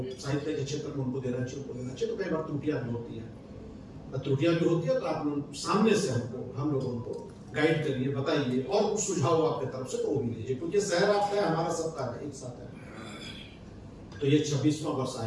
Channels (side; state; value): both; identical; correlation 1.00